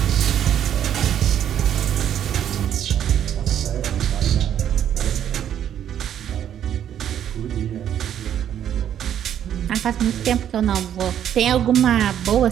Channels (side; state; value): left; quieter; 10.0 dB